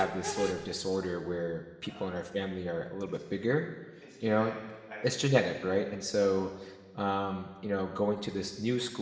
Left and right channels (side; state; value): both; identical; correlation 1.00